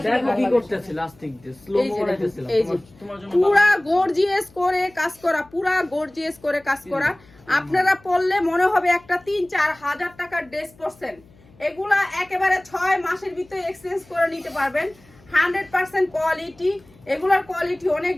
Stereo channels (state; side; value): noise; left; hum, 27 dB below the sound